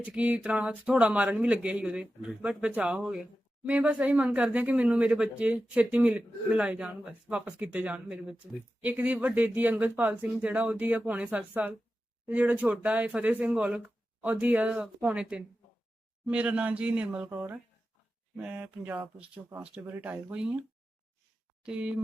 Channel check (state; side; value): normal; both; correlation 0.92